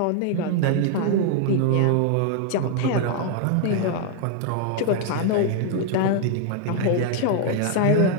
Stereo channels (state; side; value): different; both; correlation 0.00